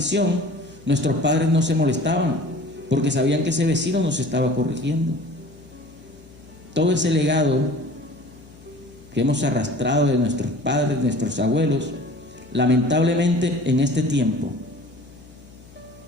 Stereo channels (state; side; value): noise; left; hum, 23 dB below the sound